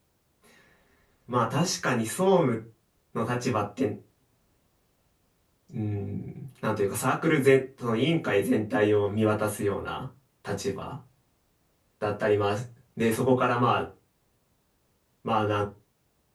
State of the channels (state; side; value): identical; both; correlation 1.00